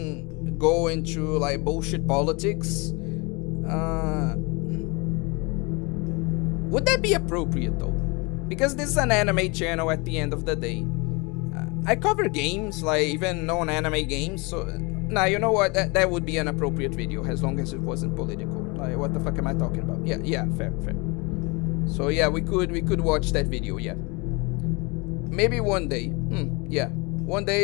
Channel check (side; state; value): right; quieter; 28.0 dB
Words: go into like bullshit politics, would that be appropriate though? Because this is an anime channel at the end of the day. I cover games, like even non-anime games, so nah, you know what, that would be an appropriate video as long as it wasn't political. Like, what the fuck am I talking about? Yeah, fair. So yeah, we could watch that video, yeah. Maybe one day. Yeah, one